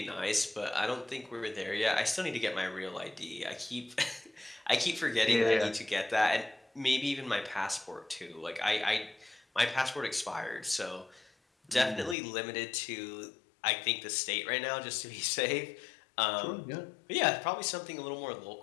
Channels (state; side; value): drops out; right; at 12.2 s